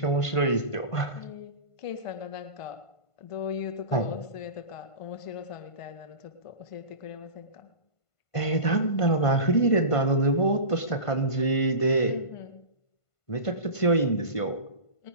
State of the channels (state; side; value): late; right; 1.5 ms